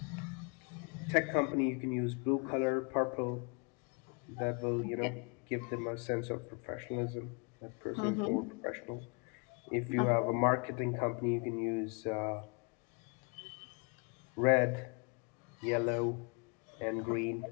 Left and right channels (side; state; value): right; quieter; 36.2 dB